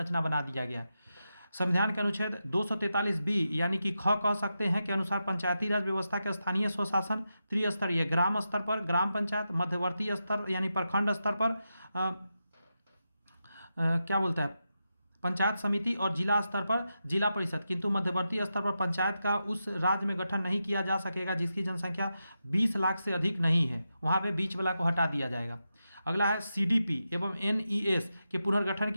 बना दिया गया है। संविधान के अनुच्छेद 243 बी यानी कि ख कह सकते हैं के अनुसार पंचायती राज व्यवस्था के स्थानीय स्वशासन त्रिस्तरीय ग्राम स्तर पर ग्राम पंचायत, मध्यवर्ती स्तर यानी प्रखंड स्तर पर क्या बोलता है पंचायत समिति और जिला स्तर पर जिला परिषद, किंतु मध्यवर्ती स्तर पर पंचायत का उस राज्य में गठन नहीं किया जा सकेगा जिसकी जनसंख्या 20 लाख से अधिक नहीं है, वहाँ पे बीच वाला को हटा दिया जाएगा। अगला है सीडीपी एवं एनईएस के पुनर्गठन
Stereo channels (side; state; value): both; inverted; correlation -0.88